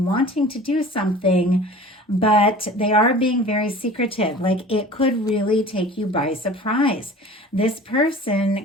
wanting to do something, but they are being very secretive. Like it could really take you by surprise. This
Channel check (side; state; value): both; normal; correlation 0.42